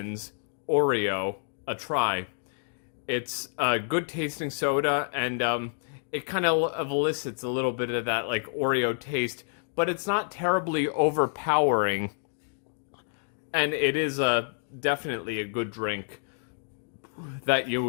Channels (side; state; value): right; silent; digital silence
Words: Oreo a try. It's a good tasting soda, and it kind of elicits a little bit of that like Oreo taste, but it's not terribly overpowering. And it is definitely a good drink that